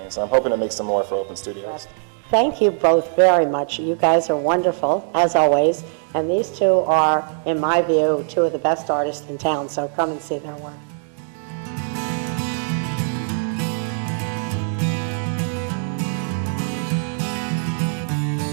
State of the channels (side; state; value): left; silent; digital silence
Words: I'm hoping to make some more for Open Studios. Thank you both very much. You guys are wonderful, as always. And these two are, in my view, two of the best artists in town, so come and see their work.